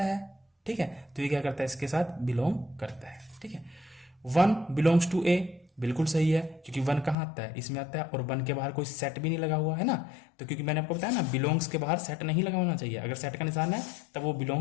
है, ठीक है। तो ये क्या करता है, इसके साथ बिलोंग करता है, ठीक है। 1 बिलोंग्स टू ए, बिल्कुल सही है, क्योंकि 1 कहां आता है, इसमें आता है, और 1 के बाहर कोई सेट भी नहीं लगा हुआ है ना। तो क्योंकि मैंने आपको बताया ना, बिलोंग्स के बाहर सेट नहीं लगा होना चाहिए। अगर सेट का निशान है तब वो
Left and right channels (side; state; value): right; drops out; at 7.2 s